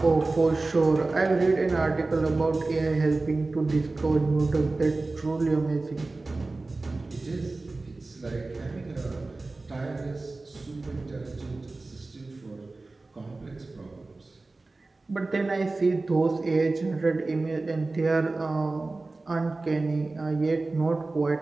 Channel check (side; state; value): left; quieter; 3.3 dB